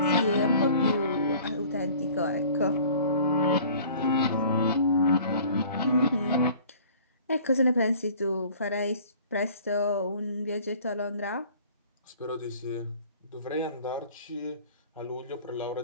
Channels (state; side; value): inverted; both; correlation -0.50